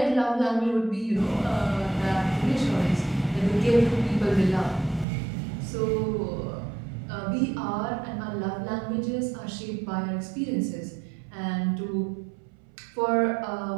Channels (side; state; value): left; drops out; at 5.1 s